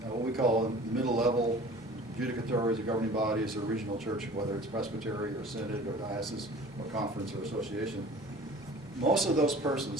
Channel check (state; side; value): normal; both; correlation 0.45